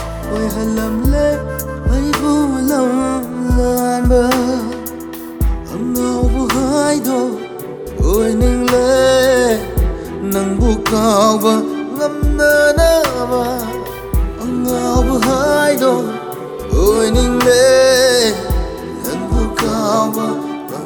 halamle ay bulam lanba Angaoba Haido Oiningle nang bukawa ngamnanaba Angaoba Haido Oiningle nang bukawa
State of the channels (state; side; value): identical; both; correlation 1.00